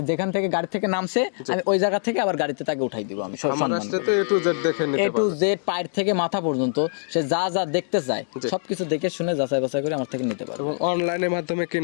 যেখান থেকে গাড়ি থেকে নামছে আমি ওই জায়গা থেকে আবার গাড়িতে তাকে উঠাই দিব। আমি সম্মান করে A to Z দেখে নিতে পারবো, A to Z পায়ের থেকে মাথা পর্যন্ত সে যা যা দেখতে চায় সবকিছু দেখে শুনে যাচাই বাছাই করে আমার থেকে নিতে পারবে। এবং অনলাইনের মাধ্যমে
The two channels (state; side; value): silent; right; digital silence